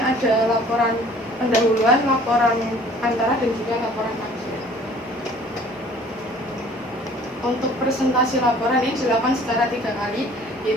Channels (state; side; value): normal; both; correlation 0.52